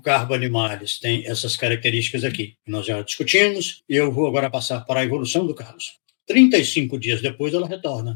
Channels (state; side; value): silent; right; 65 dB below the other